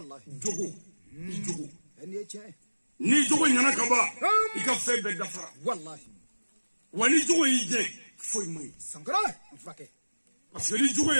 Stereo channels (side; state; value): both; inverted; correlation -1.00